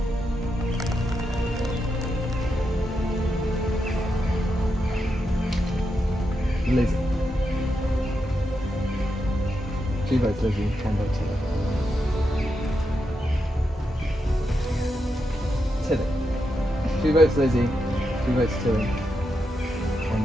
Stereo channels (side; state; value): both; normal; correlation 0.85